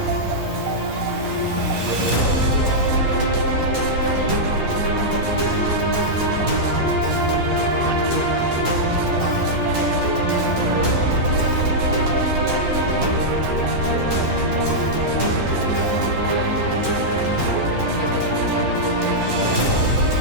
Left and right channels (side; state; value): left; late; 11 ms